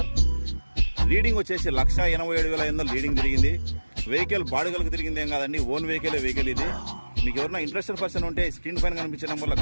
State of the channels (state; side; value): inverted; both; correlation -1.00